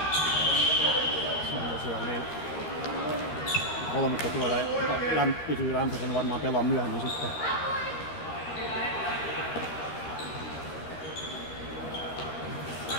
Se on tosiaan niin. 3 tuolla pysyy lämpöisen, varmaan pelaa myöhemmin sitten.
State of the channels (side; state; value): right; late; 13 ms